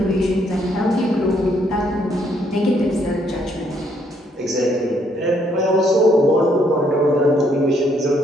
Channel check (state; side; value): normal; both; correlation 0.70